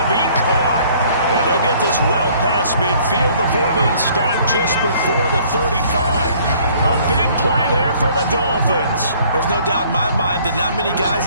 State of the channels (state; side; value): inverted; both; correlation -0.58